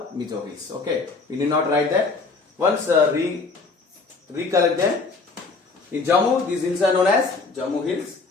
Mizo Hills. Okay, we need not write that. Once recollect them. In Jammu, these hills are known as Jammu Hills.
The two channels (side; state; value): right; quieter; 4.1 dB